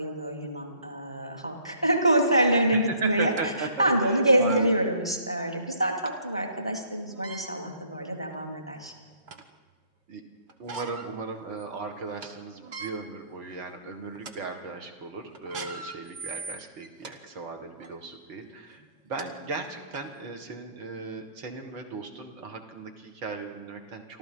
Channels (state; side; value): inverted; both; correlation -0.64